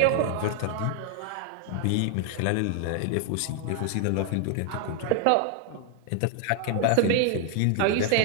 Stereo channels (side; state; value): both; different; correlation 0.00